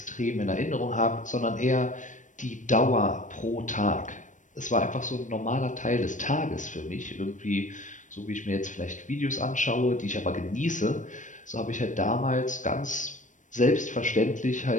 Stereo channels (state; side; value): late; right; 0.37 ms